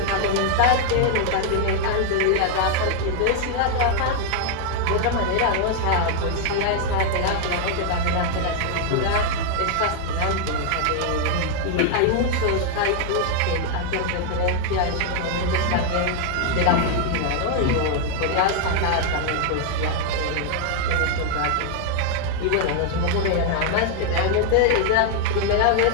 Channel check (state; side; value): different; both; correlation 0.00